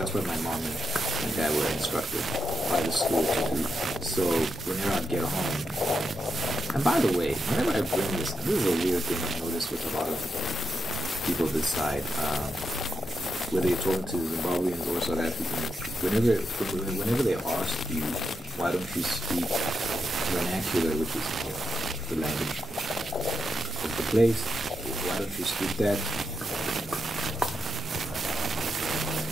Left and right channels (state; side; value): normal; both; correlation 0.83